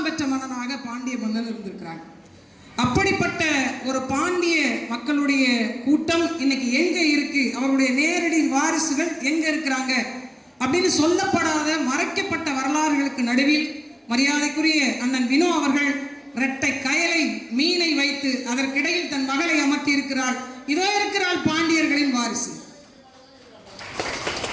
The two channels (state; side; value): identical; both; correlation 1.00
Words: பெற்ற மன்னனாக பாண்டிய மன்னன் இருந்திருக்கிறாங்க. அப்படிப்பட்ட ஒரு பாண்டிய மக்களுடைய கூட்டம் இன்னைக்கு எங்க இருக்கு, அவருடைய நேரடி வாரிசுகள் எங்க இருக்கிறாங்க அப்படின்னு சொல்லப்படாத மறைக்கப்பட்ட வரலாறுகளுக்கு நடுவில் மரியாதைக்குரிய அண்ணன் வினோ அவர்கள் இரட்டை கயலை மீனை வைத்து அதற்கிடையில் தன் மகளை அமர்த்தி இருக்கிறாள். இதோ இருக்கிறாள் பாண்டியர்களின் வாரிசு.